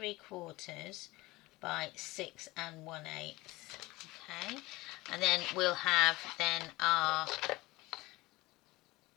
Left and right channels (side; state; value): right; quieter; 20.6 dB